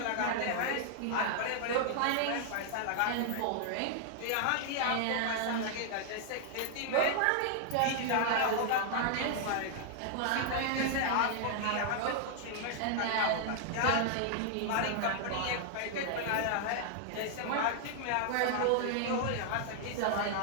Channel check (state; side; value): different; both; correlation 0.00